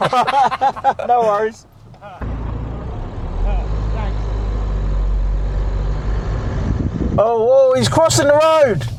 No worries. Oh, he's crossing the road.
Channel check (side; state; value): both; identical; correlation 1.00